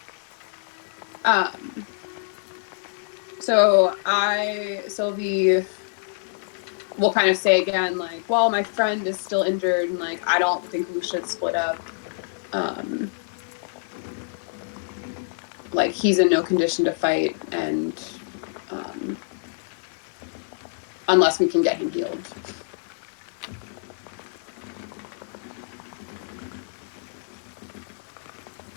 So Sylvie will kind of say again, like, well, my friend is still injured, and like, I don't think we should split up. Like, he's in no condition to fight, and unless we can get him healed.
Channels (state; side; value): silent; right; digital silence